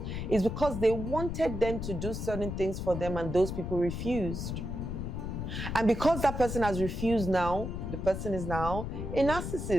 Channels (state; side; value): noise; left; rumble, 4 dB below the sound